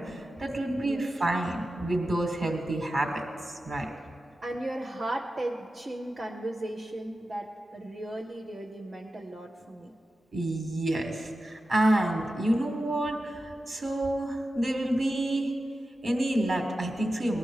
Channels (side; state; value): both; normal; correlation 0.92